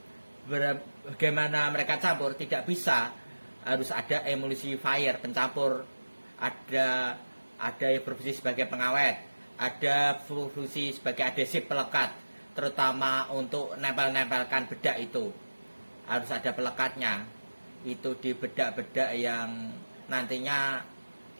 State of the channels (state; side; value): inverted; both; correlation -1.00